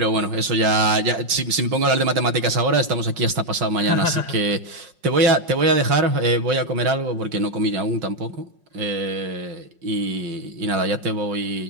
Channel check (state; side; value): late; left; 5.5 ms